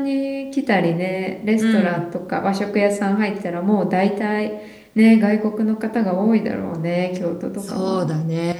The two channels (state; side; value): identical; both; correlation 1.00